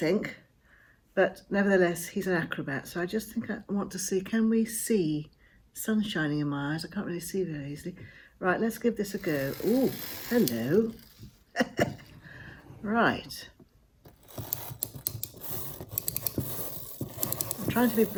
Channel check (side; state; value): both; identical; correlation 1.00